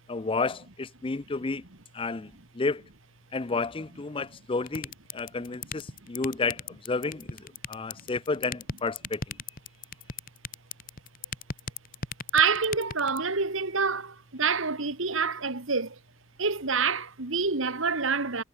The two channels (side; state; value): both; normal; correlation 0.11